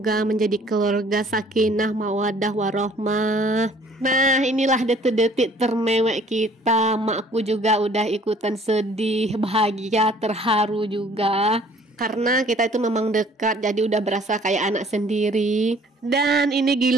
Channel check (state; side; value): normal; both; correlation 0.55